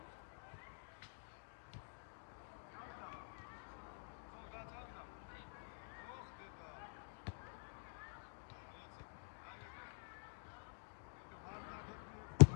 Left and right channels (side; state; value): right; silent; digital silence